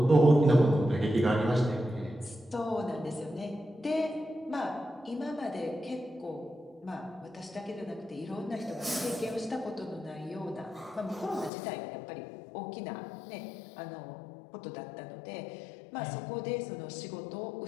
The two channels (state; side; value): drops out; right; at 11.5 s